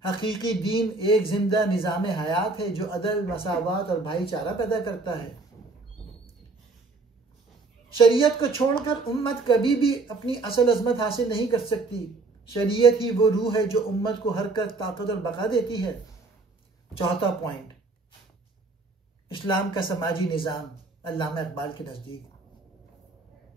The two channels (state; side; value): quieter; left; 3.6 dB